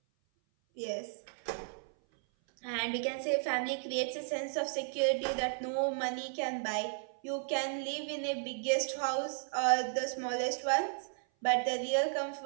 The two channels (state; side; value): silent; left; 55 dB below the other